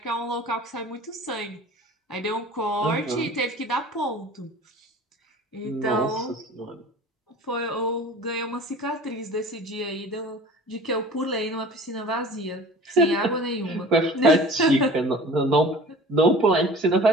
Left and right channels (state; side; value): normal; both; correlation 0.43